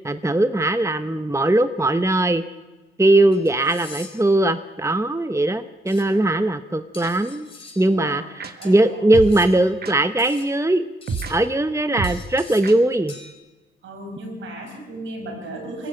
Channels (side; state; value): both; normal; correlation 0.78